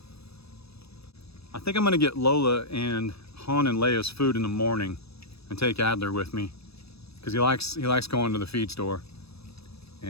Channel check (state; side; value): late; right; 0.78 ms